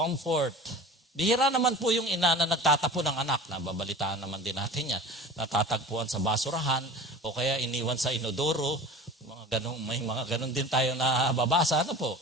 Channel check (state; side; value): normal; both; correlation 0.38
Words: Bihira naman po yung ina na nagtatapon ng anak. Nababalitaan naman din natin yan. Natatagpuan sa basurahan o kaya iniwan sa inodoro. May mga ganun din tayo na babasa. Ano po?